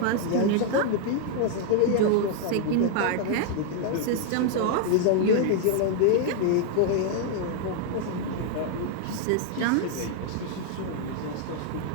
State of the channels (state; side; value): different; both; correlation 0.00